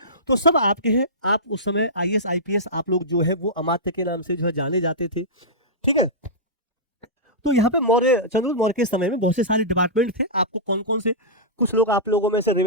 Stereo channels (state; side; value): normal; both; correlation -0.15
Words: तो सब आपके हैं। आप उस समय आईएएस, आईपीएस आप लोग जो है वो अमात्य के नाम से जो है जाने जाते थे। ठीक है, तो यहाँ पे मौर्य, चंद्रगुप्त मौर्य के समय में बहुत से सारे डिपार्टमेंट थे। आपको कौन कौन से? कुछ लोग आप लोगों में से